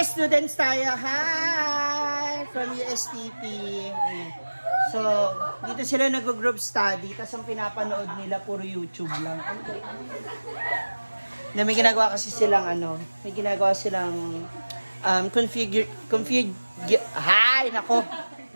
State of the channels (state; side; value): inverted; both; correlation -1.00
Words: students tayo. Hi! From USTP. So, dito sila nag-group study. Tapos ang pinapanood nila, puro YouTube lang. Na may ginagawa kasi silang may ginagawa silang hi! Nako!